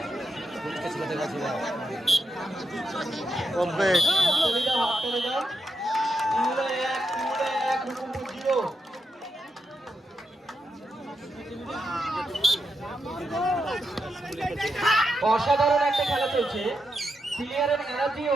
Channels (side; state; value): both; normal; correlation 0.84